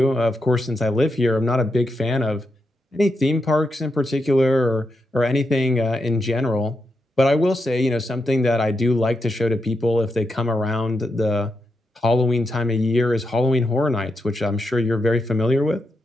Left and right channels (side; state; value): both; normal; correlation 0.85